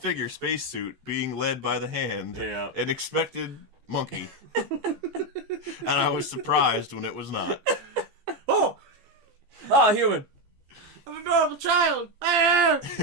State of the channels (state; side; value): late; left; 14 ms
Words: spacesuit being led by the hand, and expected monkey. And I was surprised when it was not. Oh! Human! An adorable child!